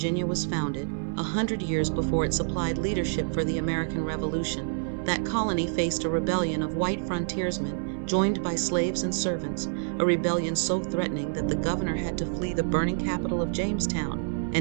was founded, 100 years before it supplied leadership for the American Revolution, that colony faced a rebellion of white frontiersmen joined by slaves and servants, a rebellion so threatening that the governor had to flee the burning capital of Jamestown,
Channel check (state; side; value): silent; left; digital silence